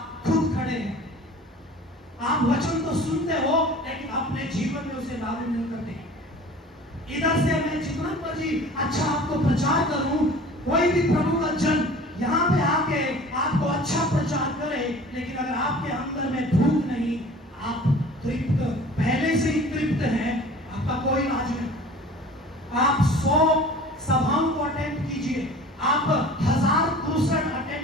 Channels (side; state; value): both; normal; correlation 0.44